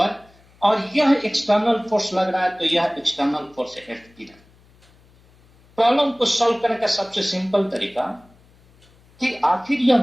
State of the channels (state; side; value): noise; left; hum, 30 dB below the sound